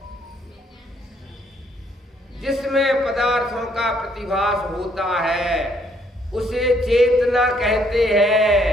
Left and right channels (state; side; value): normal; both; correlation 0.68